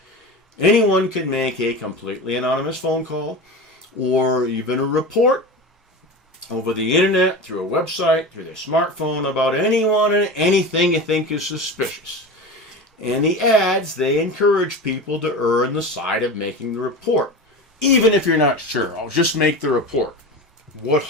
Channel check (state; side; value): normal; both; correlation 0.28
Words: anyone can make a completely anonymous phone call or even a report over the internet, through a website, through their smartphone, about anyone and anything you think is suspicious. And the ads, they encourage people to err on the side of making the report. Even if you're not sure, I'll just make the report. What